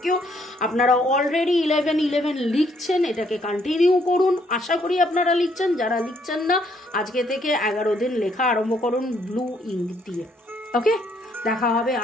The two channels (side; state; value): both; normal; correlation 0.69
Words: ইউ। আপনারা অলরেডি 11 লিখছেন, এটাকে কন্টিনিউ করুন। আশা করি আপনারা লিখছেন। যারা লিখছেন না, আজকে থেকে 11 দিন লেখা আরম্ভ করুন ব্লু ইঙ্ক দিয়ে। ওকে, দেখা হবে